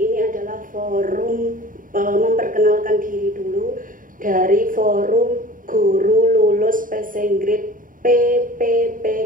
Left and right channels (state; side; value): late; left; 0.39 ms